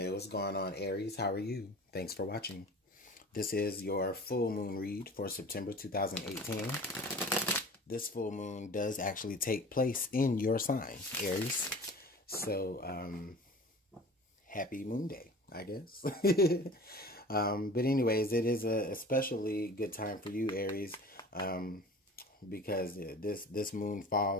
what's going on, Aries? How are you? Thanks for watching. This is your full moon read for September 2018. This full moon does actually take place in your sign, Aries. So, happy moon day, I guess. But anyways, it is a especially good time for you, Aries, because this moon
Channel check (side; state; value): both; normal; correlation 0.41